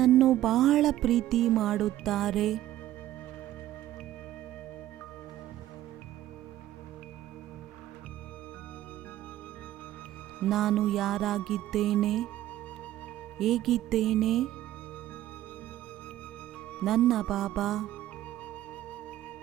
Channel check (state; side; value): quieter; left; 13.8 dB